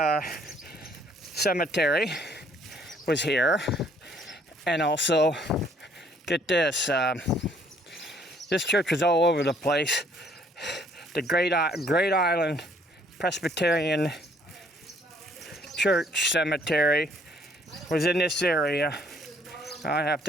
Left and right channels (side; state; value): both; normal; correlation 0.63